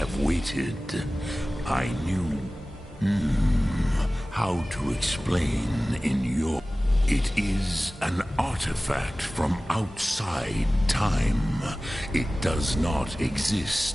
waited. I knew how to explain in your... It is an artifact from outside time. It does not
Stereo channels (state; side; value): normal; both; correlation 0.97